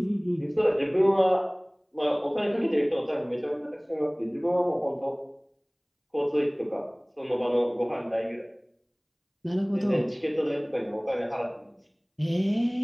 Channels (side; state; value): both; identical; correlation 1.00